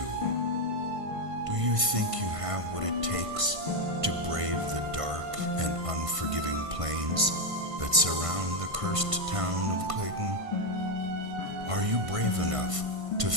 Do you think you have what it takes to brave the dark and unforgiving plains that surround the cursed town of Clayton? Are you brave enough to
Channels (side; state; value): left; late; 1.5 ms